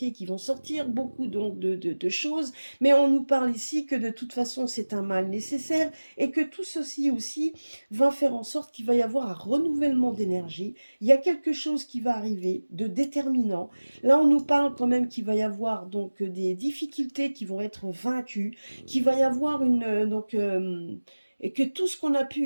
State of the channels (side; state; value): both; inverted; correlation -1.00